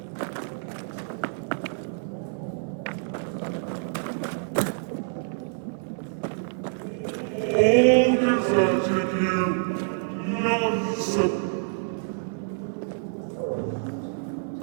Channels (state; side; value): silent; left; 60 dB below the other